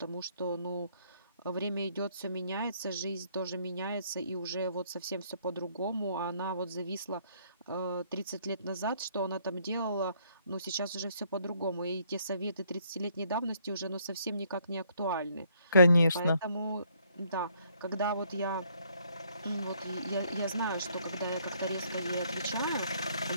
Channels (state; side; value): inverted; both; correlation -0.67